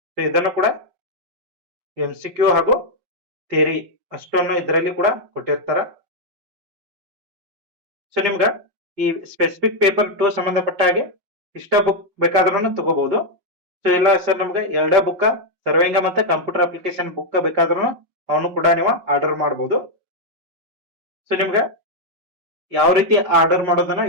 ಸೊ ಇದನ್ನು ಕೂಡ MCQ ಹಾಗೂ ಥಿಯರಿ ಅಷ್ಟನ್ನು ಇದರಲ್ಲಿ ಕೂಡ ಕೊಟ್ಟಿರ್ತಾರ. ಸೊ ನಿಮ್ಗ ಈ ಸ್ಪೆಸಿಫಿಕ್ ಪೇಪರ್ 2 ಸಂಬಂಧಪಟ್ಟ ಹಾಗೆ ಇಷ್ಟ ಬುಕ್ ಬೇಕಾದ್ರೂ ತಗೋಬಹುದು. ಸೊ ಇಲ್ಲ ಸರ್ ನಮ್ಗೆ ಎರಡೇ ಬುಕ್ ಸರ್ವೇಂಗ ಮತ್ತೆ ಕಂಪ್ಯೂಟರ್ ಅಪ್ಲಿಕೇಶನ್ ಬುಕ್ ಬೇಕಾದ್ರೂ ಅವನು ಕೂಡ ನೀವು ಆರ್ಡರ್ ಮಾಡಬಹುದು. ಸೊ ನಿಮ್ಗೆ ಯಾವ ರೀತಿ ಆರ್ಡರ್ ಮಾಡೋದನ್ನ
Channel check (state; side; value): late; left; 5.5 ms